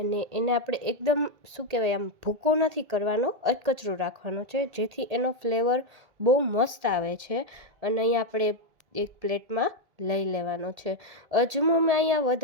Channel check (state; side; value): late; left; 1.8 ms